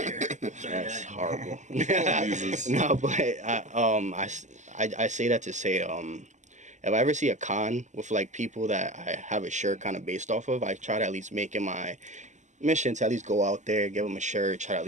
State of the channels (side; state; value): left; late; 0.34 ms